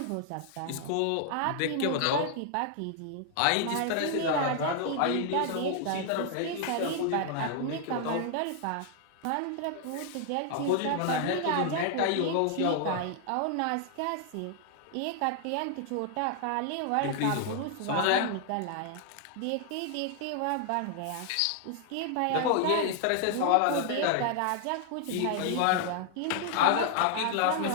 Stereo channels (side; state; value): both; different; correlation 0.00